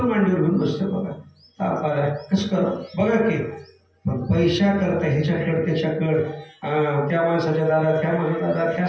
मांडीवर घेऊन बसते. बघा ताप आलाय कसं करा बघा की, पण पैशा करता ह्याच्याकडे त्याच्याकडे, त्या माणसाच्या दादा त्या माझ्या दादा त्या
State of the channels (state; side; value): identical; both; correlation 1.00